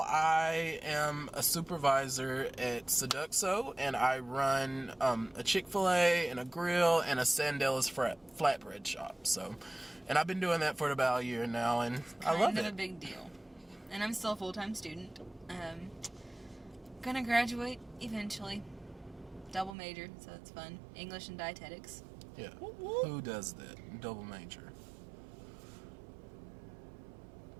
I am a supervisor at Seduxo, and I run a Chick-fil-A and a grill and a Sandella's flatbread shop. So, and I've been doing that for about a year now, and I love it. Kind of a big deal. And I'm still a full-time student. Gonna graduate eventually. Double major, so it's fun. English and dietetics. Yeah. Who does that? Double major.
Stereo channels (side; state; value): left; drops out; at 19.8 s